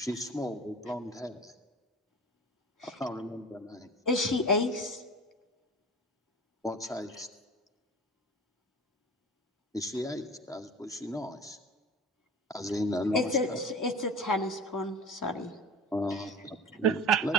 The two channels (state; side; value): normal; both; correlation 0.37